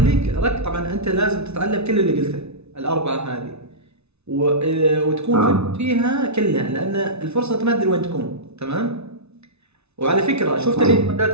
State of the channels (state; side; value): late; left; 0.81 ms